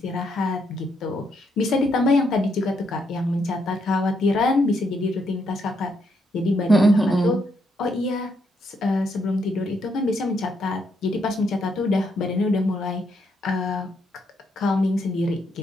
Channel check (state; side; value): normal; both; correlation 0.76